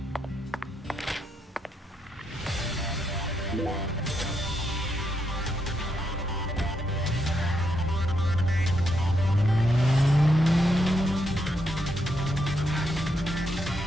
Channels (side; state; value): both; normal; correlation 0.80